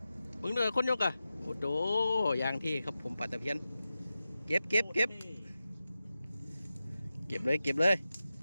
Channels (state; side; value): inverted; both; correlation -0.93